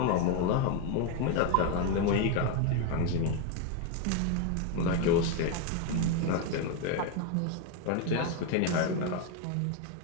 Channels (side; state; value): both; different; correlation 0.02